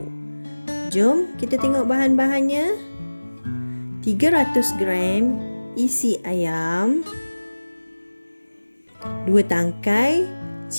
Jom kita tengok bahan-bahannya. 300 gram isi ayam, 2 tangkai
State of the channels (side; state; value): both; inverted; correlation -1.00